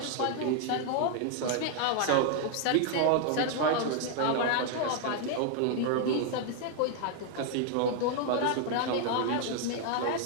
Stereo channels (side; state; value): both; different; correlation 0.00